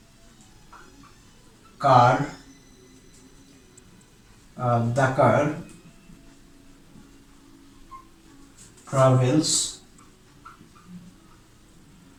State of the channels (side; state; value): both; identical; correlation 1.00